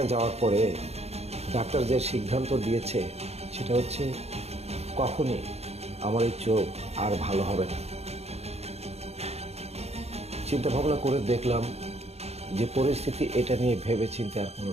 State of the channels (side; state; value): left; late; 0.31 ms